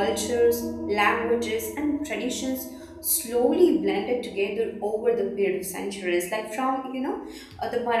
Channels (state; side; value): identical; both; correlation 1.00